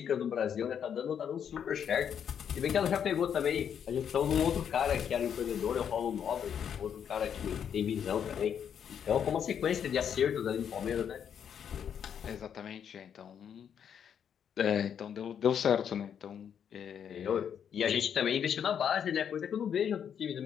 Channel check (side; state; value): right; quieter; 8.3 dB